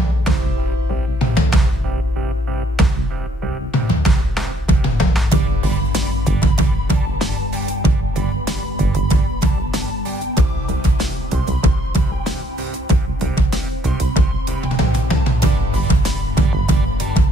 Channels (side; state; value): both; normal; correlation 0.68